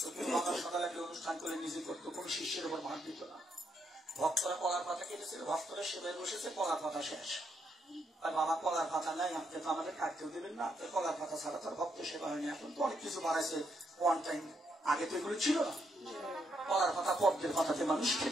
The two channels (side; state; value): both; normal; correlation 0.77